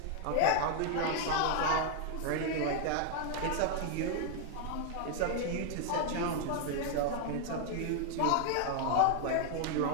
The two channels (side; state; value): both; different; correlation 0.00